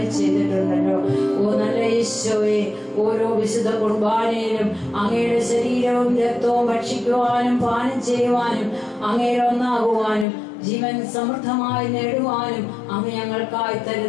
ചെയ്തിട്ടുണ്ടല്ലോ. ഓ നല്ല ഈശോയെ, ഓരോ വിശുദ്ധ കുർബാനയിലും അങ്ങയുടെ ശരീരവും രക്തവും ഭക്ഷിക്കുവാനും പാനം ചെയ്യുവാനും അങ്ങയിൽ ഒന്നാകുവാനും ജീവൻ സമൃദ്ധമായി നേടുവാനും അങ്ങ് ഞങ്ങൾക്കായി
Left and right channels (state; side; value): drops out; right; at 10.2 s